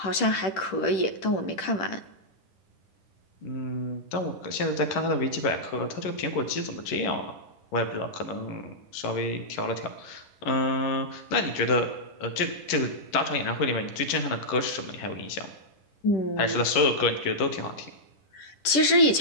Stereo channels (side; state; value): right; late; 11 ms